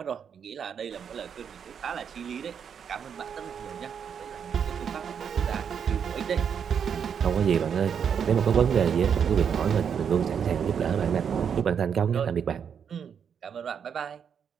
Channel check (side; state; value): left; quieter; 7.5 dB